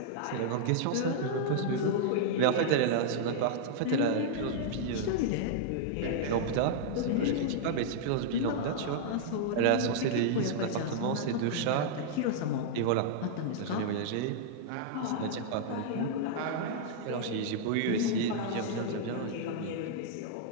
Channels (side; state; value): both; different; correlation -0.01